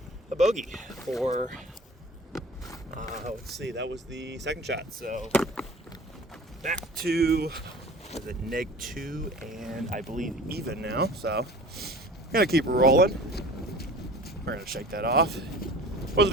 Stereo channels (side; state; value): both; normal; correlation 0.42